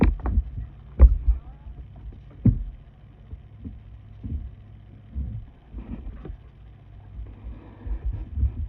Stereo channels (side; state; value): both; identical; correlation 1.00